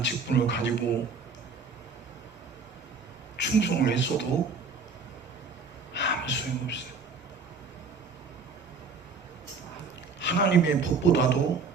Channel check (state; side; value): quieter; left; 4.8 dB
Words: 직분을 가지고 충성을 했어도 아무 소용없어요. 하나님의 법보다도